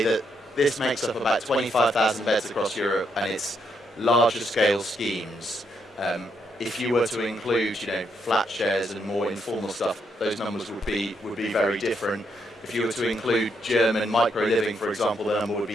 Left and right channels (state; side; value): normal; both; correlation 0.77